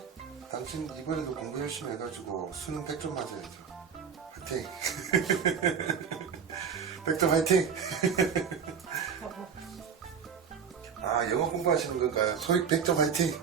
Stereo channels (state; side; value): quieter; left; 6.9 dB